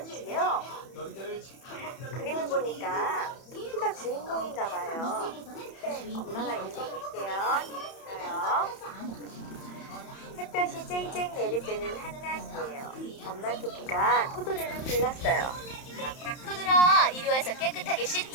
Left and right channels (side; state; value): right; late; 31 ms